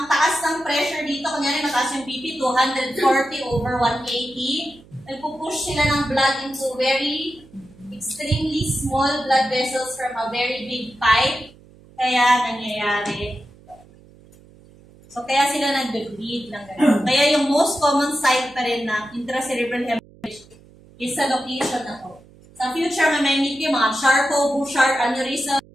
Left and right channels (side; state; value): right; noise; hum, 25 dB below the sound